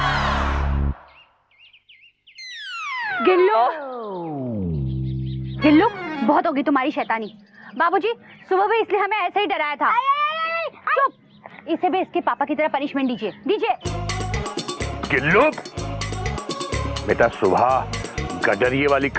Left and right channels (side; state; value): both; identical; correlation 1.00